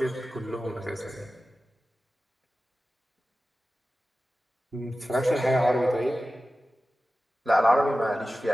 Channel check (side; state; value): both; normal; correlation 0.95